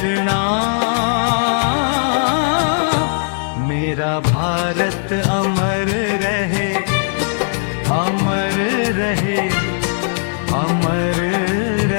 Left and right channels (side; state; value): right; silent; digital silence